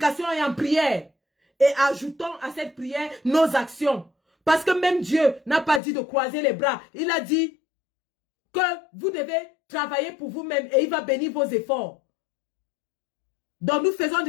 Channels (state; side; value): drops out; right; at 5.8 s